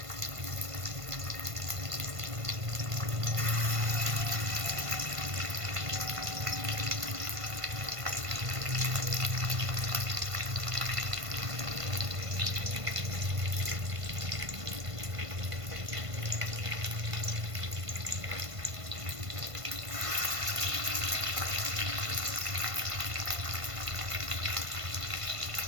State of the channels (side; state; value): left; late; 1.5 ms